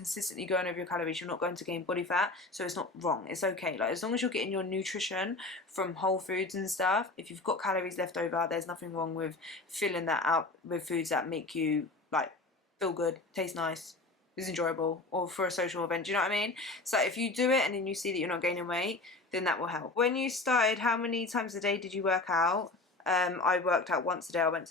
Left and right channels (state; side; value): quieter; right; 3.2 dB